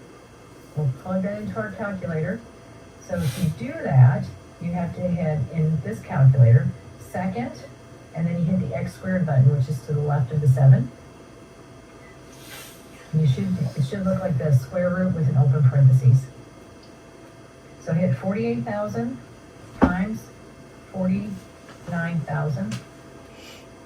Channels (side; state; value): both; identical; correlation 1.00